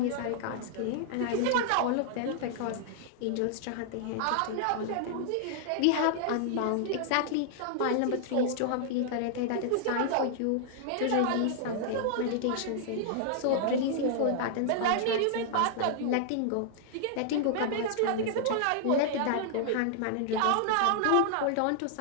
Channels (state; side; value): different; both; correlation -0.01